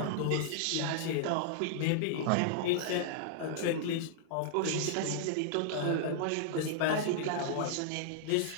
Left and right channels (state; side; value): different; both; correlation -0.01